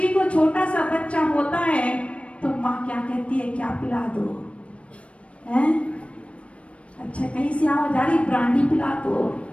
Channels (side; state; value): right; late; 0.062 ms